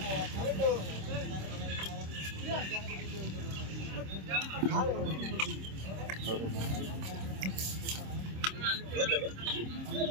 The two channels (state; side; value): late; left; 26 ms